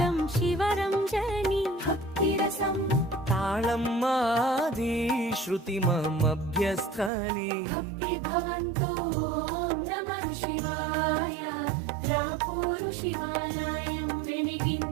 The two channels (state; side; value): drops out; left; at 7.1 s